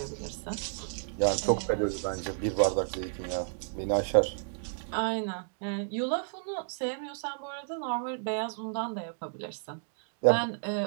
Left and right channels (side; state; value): left; silent; digital silence